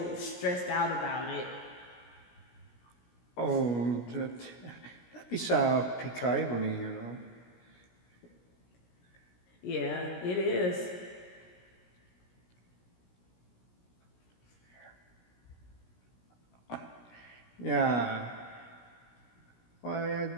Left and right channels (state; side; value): late; right; 17 ms